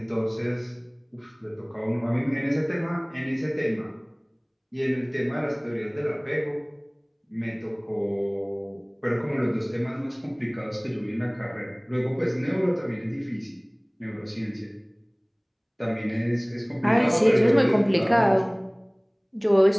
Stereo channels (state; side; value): identical; both; correlation 1.00